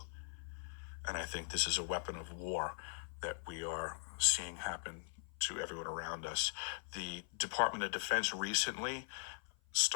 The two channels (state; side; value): silent; right; 51 dB below the other